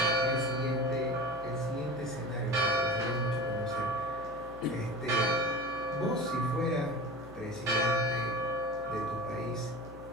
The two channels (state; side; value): noise; left; hum, 18 dB below the sound